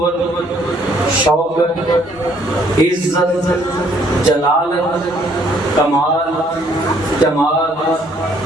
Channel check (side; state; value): right; noise; hum, 29 dB below the sound